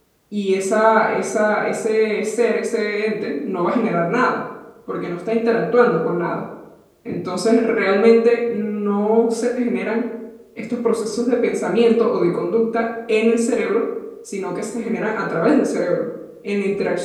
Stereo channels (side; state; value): both; identical; correlation 1.00